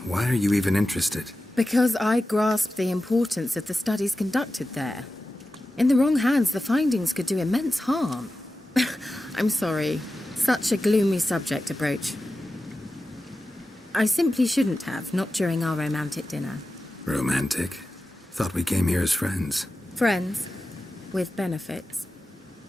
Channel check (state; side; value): normal; both; correlation 0.93